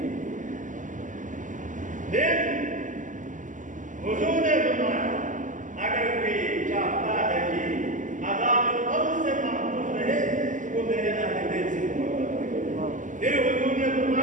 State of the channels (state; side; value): late; left; 0.37 ms